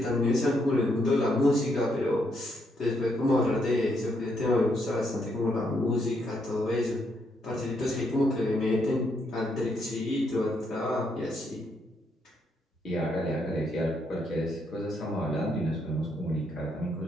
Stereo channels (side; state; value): both; normal; correlation 0.76